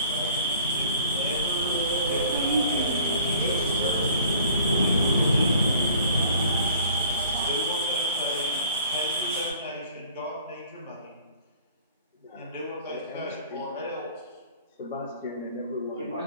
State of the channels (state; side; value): inverted; both; correlation -0.50